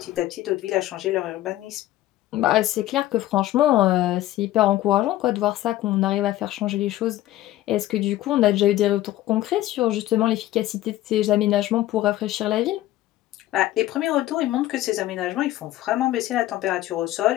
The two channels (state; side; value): quieter; right; 15.0 dB